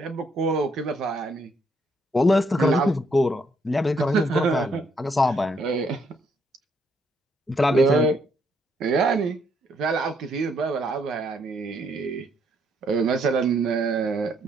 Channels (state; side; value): normal; both; correlation 0.71